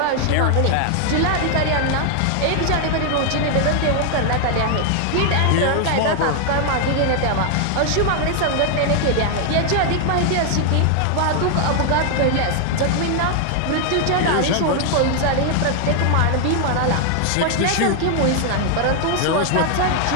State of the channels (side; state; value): both; different; correlation 0.00